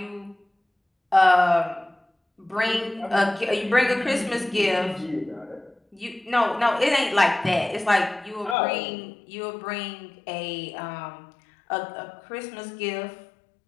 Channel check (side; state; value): right; drops out; at 8.6 s